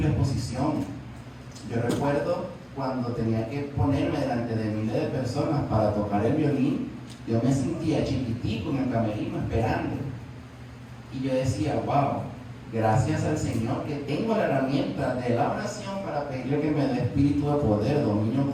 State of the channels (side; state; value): both; identical; correlation 1.00